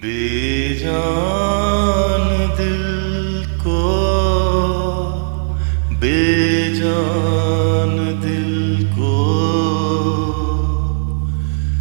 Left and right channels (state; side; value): silent; left; digital silence